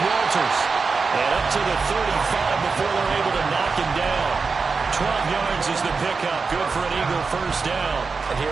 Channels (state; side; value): quieter; left; 4.7 dB